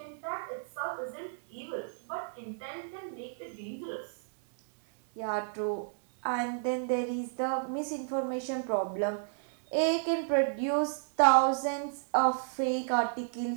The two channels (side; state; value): left; silent; digital silence